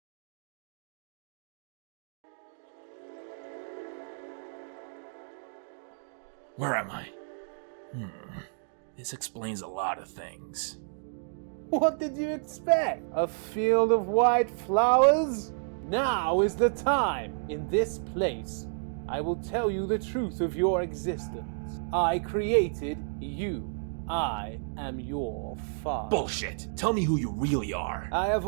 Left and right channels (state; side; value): silent; left; digital silence